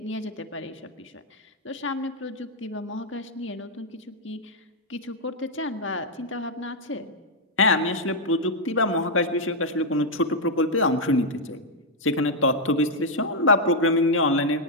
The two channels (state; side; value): normal; both; correlation -0.02